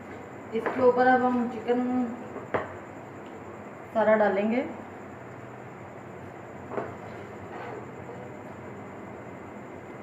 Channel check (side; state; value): both; identical; correlation 1.00